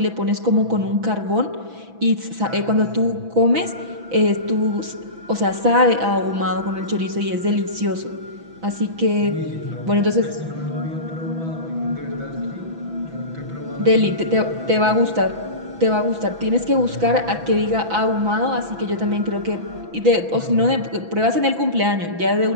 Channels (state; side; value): late; left; 6.0 ms